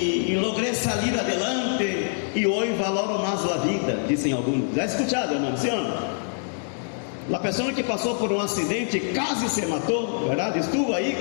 logrei sair adelante, e hoje valoro mais a vida, dizem alguns. Já escutado, irmão, sim ou não? A pessoa que passou por um acidente, quase se matou, verdade? Estuvo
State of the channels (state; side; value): silent; right; 62 dB below the other